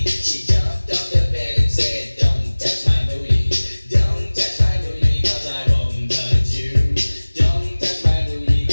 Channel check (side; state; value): both; inverted; correlation -1.00